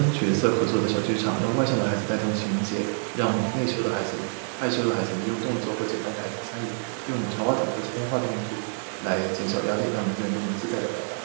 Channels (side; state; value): left; silent; 58 dB below the other